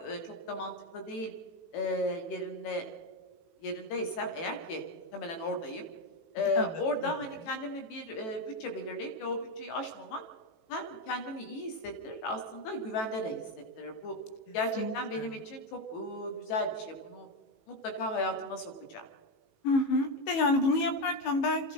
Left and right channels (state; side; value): late; right; 18 ms